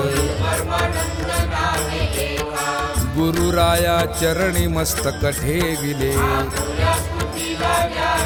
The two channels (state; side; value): identical; both; correlation 1.00